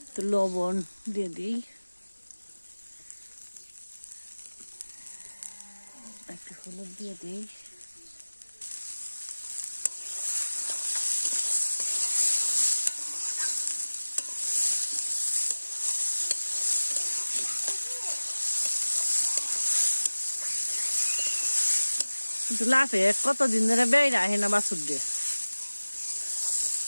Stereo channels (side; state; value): both; inverted; correlation -1.00